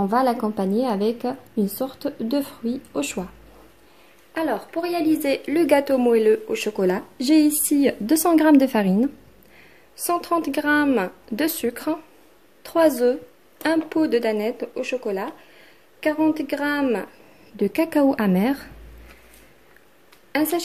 va l'accompagner avec une sorte de fruit au choix. Alors pour réaliser le gâteau moelleux au chocolat, j'ai ici 200 g de farine, 130 g de sucre, 3 œufs, un pot de danette au chocolat, 40 g de cacao amer, un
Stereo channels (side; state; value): both; identical; correlation 1.00